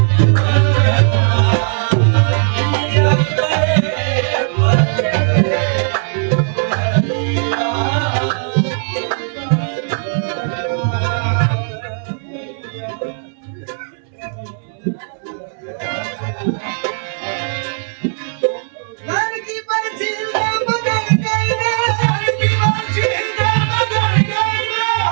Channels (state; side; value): silent; left; 62 dB below the other